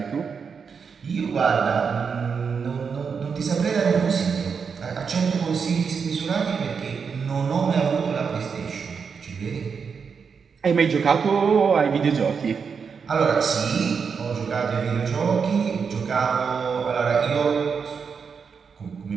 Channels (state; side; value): quieter; left; 6.0 dB